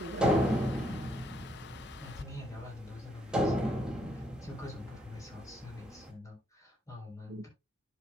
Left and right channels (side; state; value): both; normal; correlation 0.73